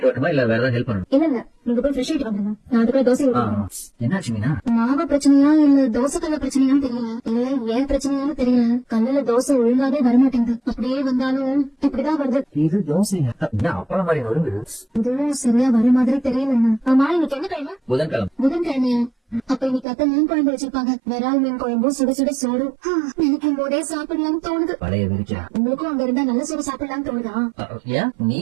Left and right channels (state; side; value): drops out; left; at 19.9 s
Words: வரணுமா இல்ல வேற ஏதாவது ஹெல்ப் பண்ணணும்? இல்ல நீங்க போய் ஃப்ரெஷ் ஆயிட்டு வந்துருங்க, நான் அதுக்குள்ள தோசை ஊத்துறேன். என்னாச்சு மீனா? மாவு பிரச்சனையா இல்ல தோசை கல்ல பிரச்சனையான்னு தெரியல. இல்ல ஏன் பிரச்சனையான்னு தெரியல. கல்லுல தோசை ஒழுங்காவே வரமாட்டேங்குது. அப்படியே வந்தாலும் இப்படிதான் வருது. இது தோசை அப்பளம் மாதிரி வருது. இதுவும் சரியா வர மாதிரி தெரியலங்க. ஆமா, இன்னைக்கு என்ன கிழமை? புதன்கிழமை. புதன்கிழமையா? அப்ப இன்னைக்கு அத்தை மீன் குழம்பு வச்சிருப்பாங்க. விரால் மீன் குழம்பும் சுட சுட சோறு நினைக்கும் போதே சாப்பிடலாம்னு தோணுது. பழைய விரிச்சா உங்களுக்கும் அங்க இருந்தா நல்ல சோறு சாப்பிடலாம்னு தோணுதா? ஏன் நீ